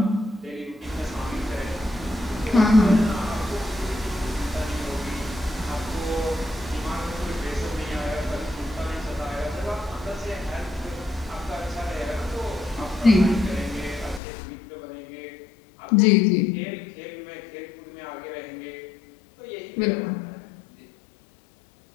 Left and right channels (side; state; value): right; drops out; at 14.2 s